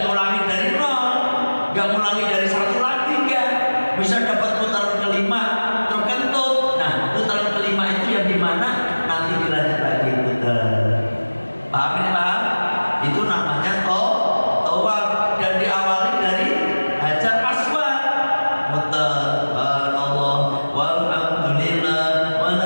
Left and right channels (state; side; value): inverted; both; correlation -1.00